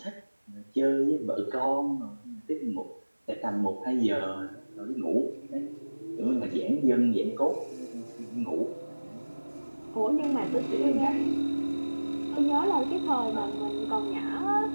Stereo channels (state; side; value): inverted; both; correlation -1.00